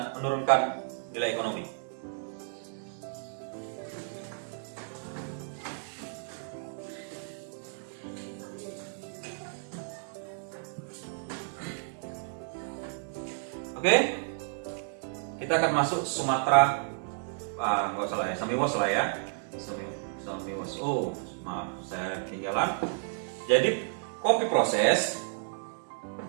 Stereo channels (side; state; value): left; silent; digital silence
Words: menurunkan nilai ekonomi. Oke, kita akan masuk Sumatera, nggak salah ya, Semiwos lah ya, Semiwos. Oh, maaf, saya ketinggalan. Jadi kopi proses